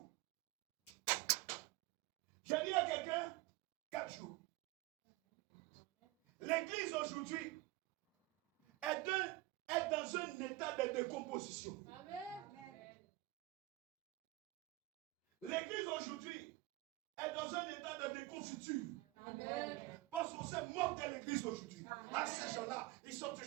Je dis à quelqu'un, 4 jours. L'église aujourd'hui est dans position. Amen. L'église aujourd'hui est dans un état de déconfiture. Amen. Parce qu'on se moque de l'église aujourd'hui. À ces gens-là, ils sont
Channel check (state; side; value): quieter; left; 19.7 dB